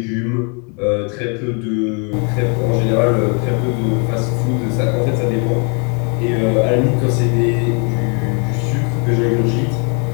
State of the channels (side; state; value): right; quieter; 36.7 dB